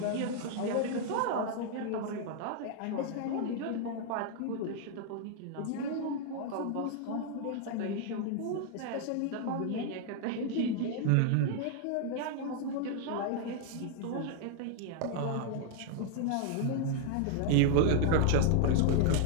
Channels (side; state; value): both; different; correlation 0.00